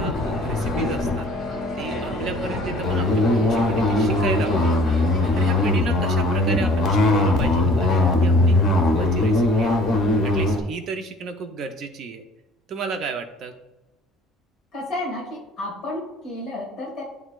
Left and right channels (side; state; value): both; normal; correlation 0.50